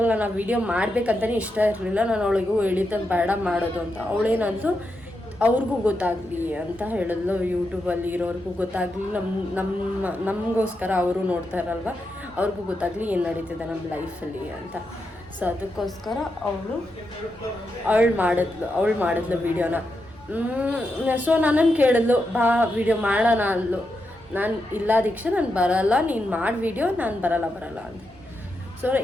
ನಾನು ಆ ವಿಡಿಯೋ ಮಾಡಬೇಕಂತಲೇ ಇಷ್ಟ ಇರಲಿಲ್ಲ. ನಾನು ಅವಳಿಗೂ ಹೇಳಿದ್ದೆ ಬೇಡ ಮಾಡೋದು ಅಂತ. ಅವಳೇನಂತೂ ಅವ್ರಿಗೂ ಗೊತ್ತಾಗಲಿ ಅಂತ ಹೇಳಿದ್ಲು, ಯೂಟ್ಯೂಬಲ್ಲಿ ಇರೋರಿಗೂ ಗೊತ್ತಾಗಲಿ, ನಮಗೋಸ್ಕರ ಅವರು ನೋಡ್ತಾ ಇರಲ್ವ, ಅವ್ರಿಗೂ ಗೊತ್ತಾಗಲಿ ಏನು ನಡೀತಿದೆ ನಮ್ಮ ಲೈಫಲ್ಲಿ ಅಂತ. ಸೊ ಅದಕ್ಕೋಸ್ಕರ ಅವಳು ಮಾಡಿದ್ಲು ವೀಡಿಯೋನ. ಸೊ ನನ್ನನ್ನು ಕೇಳಿದ್ಲು, ಬಾ ವಿಡಿಯೋ ಮಾಡೋಣ ಅಂದ್ಲು. ನಾನು ಇಲ್ಲ ದೀಕ್ಷಾ, ನಾನು ಬರಲ್ಲ, ನೀನು ಮಾಡಿ ವಿಡಿಯೋ, ನಾನು ಬರಲ್ಲ ಅಂತ. ಸೊ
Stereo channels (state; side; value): normal; both; correlation 0.85